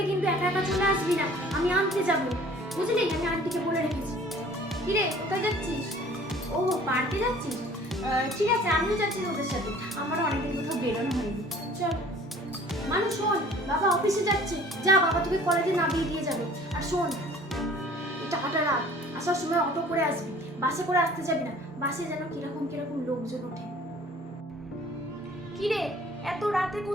কিন্তু একা একা চলে আসবি না, আমি আনতে যাবো, বুঝলি? আমি আন্টিকে বলে রেখেছি। কিরে, কোথায় যাচ্ছিস? ও, পার্কে যাচ্ছিস? ঠিক আছে, আমিও যাচ্ছি তোদের সাথে, আমারও অনেকদিন কোথাও বেরোনো হয়নি। চল। মানু শোন, বাবা অফিসে যাচ্ছে, যা, বাবা তোকে কলেজে নামিয়ে দিয়ে যাবে। আর শোন, টাকাটা রাখ, আসার সময় অটো করে আসবি, বাসে করে আসতে যাবি না, বাসে যেন কিরকম কিরকম লোকজন ওঠে। কিরে, এত রাতে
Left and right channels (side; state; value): both; normal; correlation 0.50